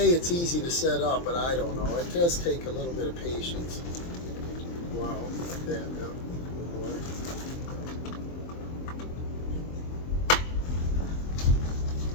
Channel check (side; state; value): right; late; 23 ms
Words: it's easy to set up, but I don't know. It does take a little bit of patience. Wow, like that, yeah.